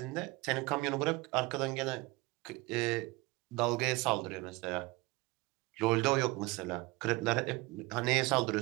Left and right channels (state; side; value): quieter; left; 23.0 dB